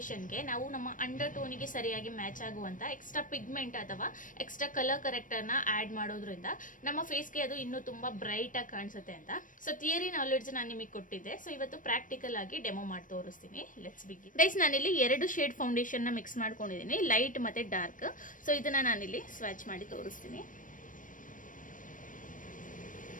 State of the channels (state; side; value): late; right; 0.38 ms